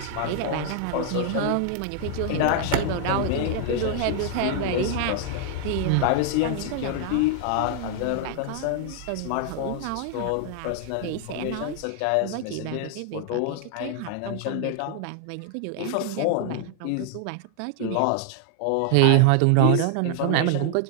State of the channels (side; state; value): both; different; correlation 0.00